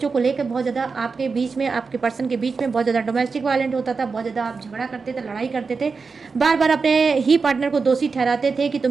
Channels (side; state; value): left; quieter; 4.8 dB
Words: को लेकर बहुत ज़्यादा आपके बीच में, आपके पर्सन के बीच में बहुत ज़्यादा डोमेस्टिक वायलेंट होता था, बहुत ज़्यादा आप झगड़ा करते थे, लड़ाई करते थे, बार बार अपने ही पार्टनर को दोषी ठहराते थे कि